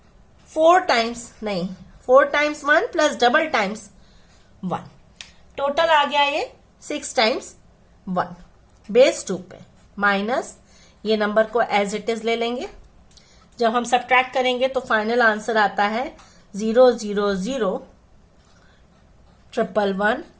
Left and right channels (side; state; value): both; identical; correlation 1.00